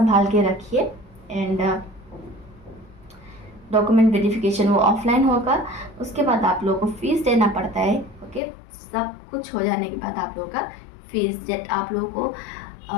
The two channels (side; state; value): right; drops out; at 8.4 s